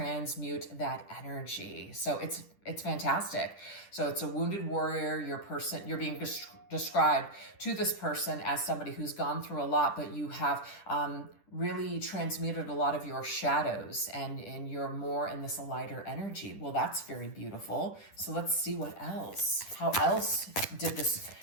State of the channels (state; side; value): late; right; 10 ms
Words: that energy. So it's fantastic. So it's a wounded warrior. You're being described to this person as somebody who's gone through a lot, but you have, really transmuted a lot of your shadows and you're more in this lighter energy. Well, that's very beautiful. So let's see what else. How else did this